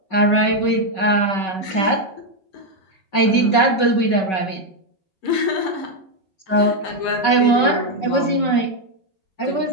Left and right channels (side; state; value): right; late; 5.3 ms